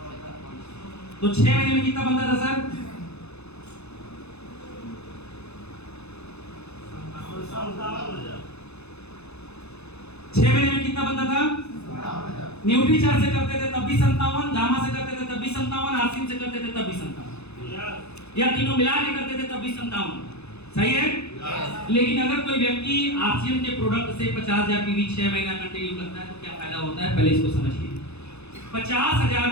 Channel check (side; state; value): right; late; 0.80 ms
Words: तो 6 महीने में कितना बनता था सर? 6 महीने में कितना बनता था? न्यूट्री चार्ज से करते थे तब भी 57, गामा से करते थे तब भी 57, आरसीएम से करते थे तब भी 57, या तीनों मिला के करते थे तब भी 57। सही है? लेकिन अगर कोई व्यक्ति आरसीएम के प्रोडक्ट से 50,000 पीवी 6 महीना कंटिन्यू करता है तो क्या फायदा होता है, पहले इसको समझिए। 50,000